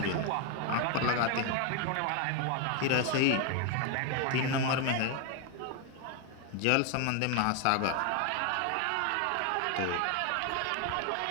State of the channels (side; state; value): both; different; correlation 0.01